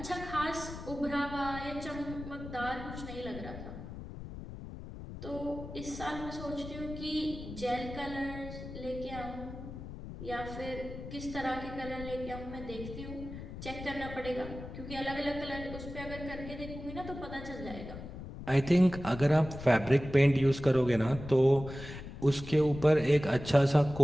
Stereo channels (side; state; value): left; noise; rumble, 11 dB below the sound